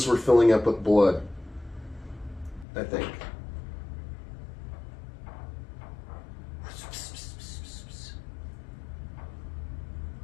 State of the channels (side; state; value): right; drops out; at 2.7 s